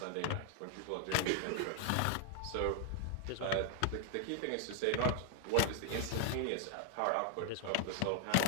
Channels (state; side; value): different; both; correlation 0.00